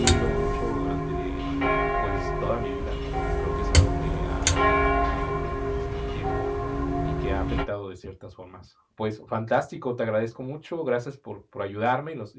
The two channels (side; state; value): both; identical; correlation 1.00